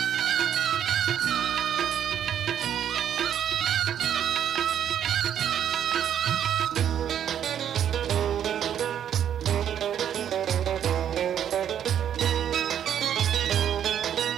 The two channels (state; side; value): quieter; left; 9.6 dB